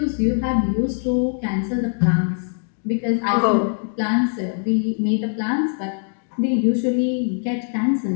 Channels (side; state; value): right; silent; 57 dB below the other